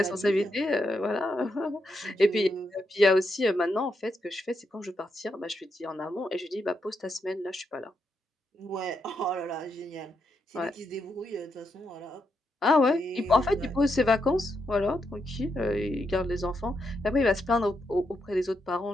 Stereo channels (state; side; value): normal; both; correlation 0.82